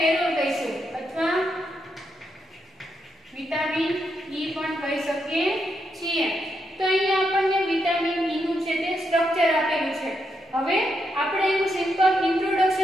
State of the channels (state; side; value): normal; both; correlation 0.81